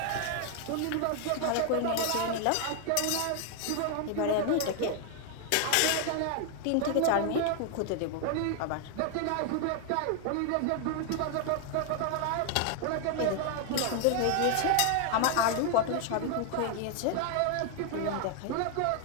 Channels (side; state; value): both; different; correlation 0.00